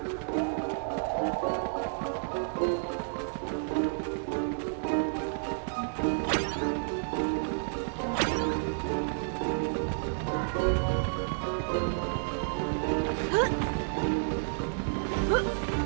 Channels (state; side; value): silent; left; digital silence